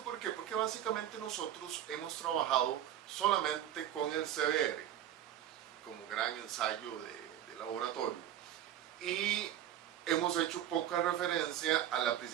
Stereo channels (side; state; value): left; quieter; 11.2 dB